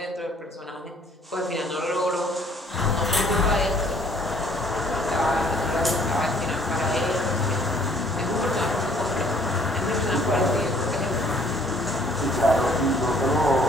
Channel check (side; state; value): both; normal; correlation 0.59